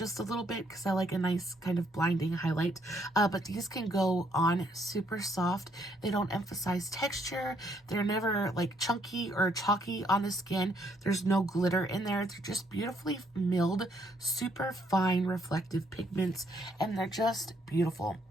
a little bit because I like a nice kind of blinding highlight. But these can go on super soft. They don't emphasize texture. They're never like chunky or chalky on the skin. There's no glitter in there. They're just beautifully milled, super fine reflective pigments, and they're just beautiful.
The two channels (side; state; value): both; normal; correlation 0.70